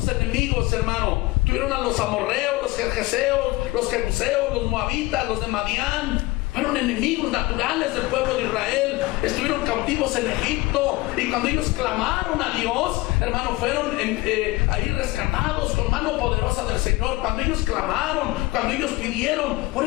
enemigos, hermano? Tuvieron a los amorreos, los gergeseos, los jebuseos, los moabitas, los de Madián. Fueron enemigos naturales del pueblo de Israel. Estuvieron cautivos en Egipto, y cuando ellos clamaron a Dios, hermano, fueron ahí rescatados con mano poderosa del Señor. Cuando ellos clamaron, cuando ellos pidieron. Por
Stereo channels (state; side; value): quieter; right; 20.7 dB